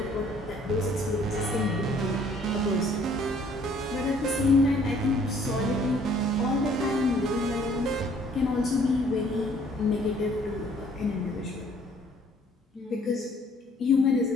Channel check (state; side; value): normal; both; correlation 0.60